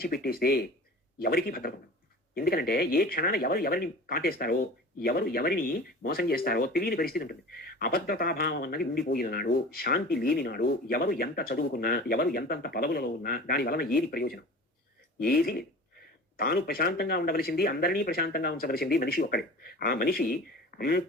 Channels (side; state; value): both; normal; correlation 0.38